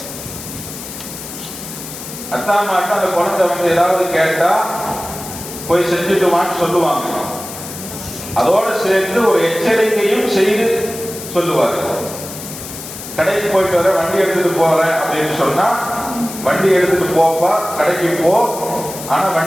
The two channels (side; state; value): left; noise; hiss, 11 dB below the sound